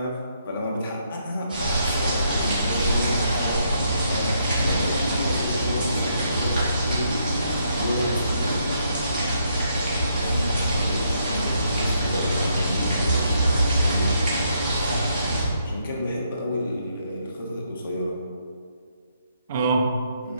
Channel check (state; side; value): inverted; both; correlation -0.74